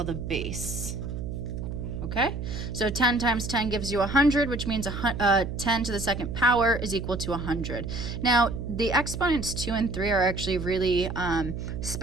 the base. Okay, so 10 times 10 gives you 100, which means 10 to the second power is equal to 100. Now, the exponents 2 and 3 are actually really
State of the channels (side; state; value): right; noise; hum, 5 dB below the sound